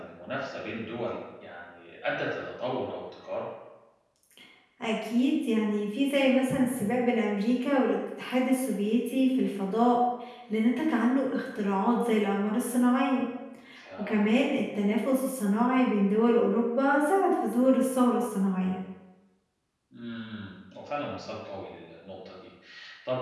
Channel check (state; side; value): identical; both; correlation 1.00